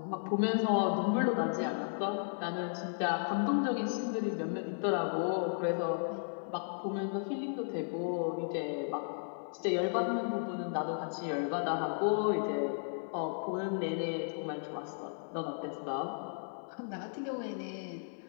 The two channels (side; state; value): right; silent; 55 dB below the other